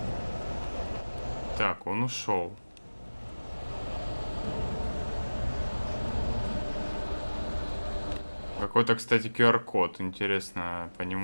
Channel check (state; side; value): inverted; both; correlation -1.00